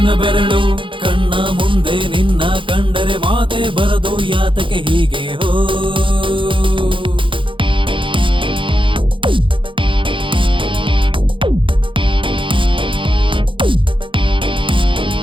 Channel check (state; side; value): late; left; 0.25 ms